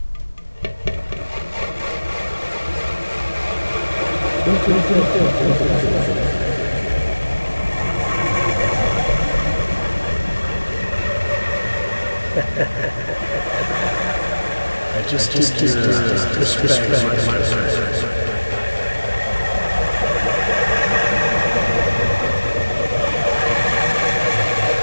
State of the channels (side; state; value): both; inverted; correlation -1.00